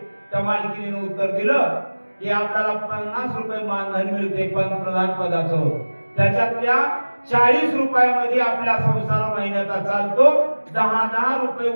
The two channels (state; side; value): inverted; both; correlation -1.00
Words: त्या मालकीने उत्तर दिलं की आपल्याला 50 रुपये मानधन मिळते पंतप्रधान पदाचं, त्याच्यातल्या 40 रुपयामध्ये आपला संसार महिन्याचा चालतो. 10 रुपये